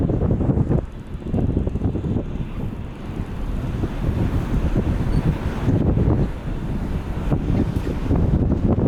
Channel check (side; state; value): both; identical; correlation 1.00